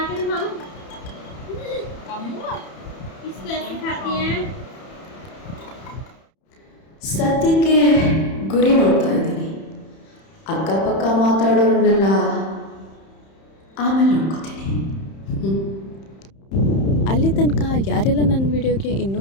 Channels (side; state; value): right; late; 31 ms